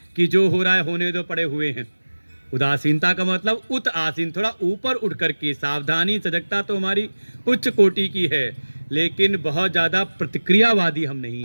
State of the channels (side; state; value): both; inverted; correlation -1.00